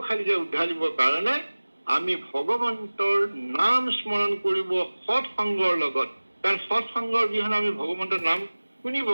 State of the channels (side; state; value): both; inverted; correlation -1.00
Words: উদ্ধাৰিবৰ কাৰণে আমি ভগৱন্তৰ নাম স্মৰণ কৰিব সৎ সংগৰ লগত, কাৰণ সৎসংগৰ অবিহনে আমি ভগৱন্তৰ নাম শুনিব